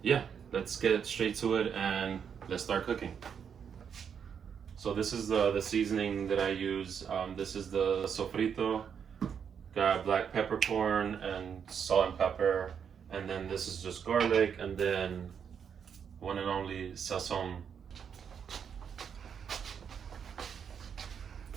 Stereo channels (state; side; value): quieter; left; 7.4 dB